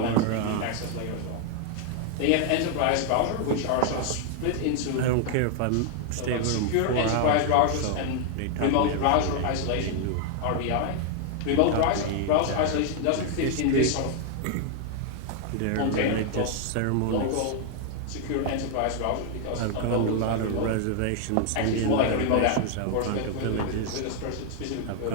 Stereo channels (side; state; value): both; different; correlation 0.00